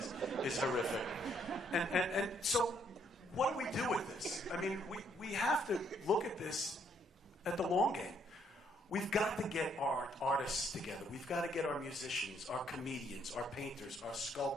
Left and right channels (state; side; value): normal; both; correlation 0.69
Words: is horrific. And so, what do we do with this? I mean, we have to look at this at the long game. We've got to get our artists together. We've got to get our musicians, our comedians, our painters, our